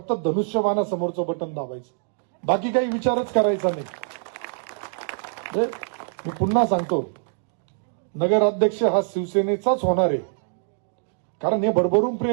धनुष्यबाणासमोरचं बटन दाबायचं, बाकी काही विचारच करायचा नाही. मी पुन्हा सांगतो, नगराध्यक्ष हा शिवसेनेचाच होणार आहे. कारण हे भरभरून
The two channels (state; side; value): silent; left; digital silence